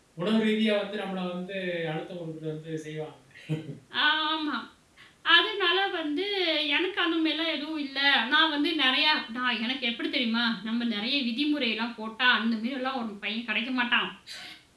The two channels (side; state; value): both; identical; correlation 1.00